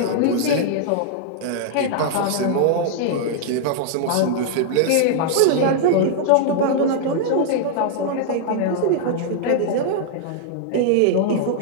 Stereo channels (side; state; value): both; different; correlation -0.01